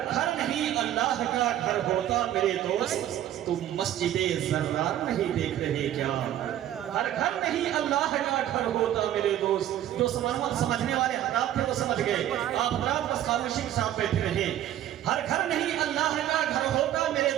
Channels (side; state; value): left; quieter; 12.1 dB